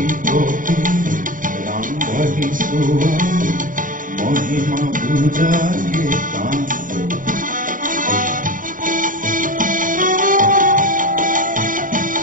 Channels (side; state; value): left; late; 0.39 ms